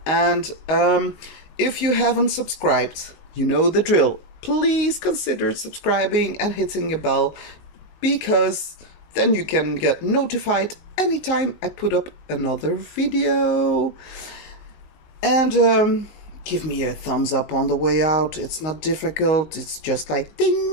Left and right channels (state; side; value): late; right; 19 ms